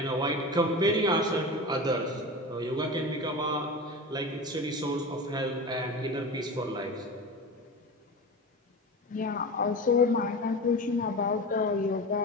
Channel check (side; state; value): both; normal; correlation 0.28